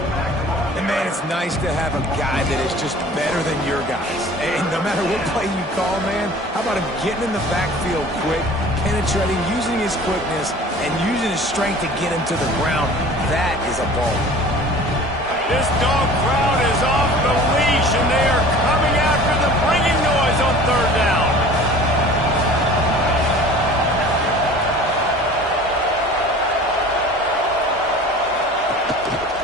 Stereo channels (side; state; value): both; normal; correlation 0.44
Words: And, man, it's nice to have a guy that is just better than your guys. And no matter what play you call, man, how about him getting in the backfield quick, penetrating, using his quickness, and using his strength to get him to the ground? That is a ball. This dog crowd is off the leash, and they are coming after them, bringing noise on third down.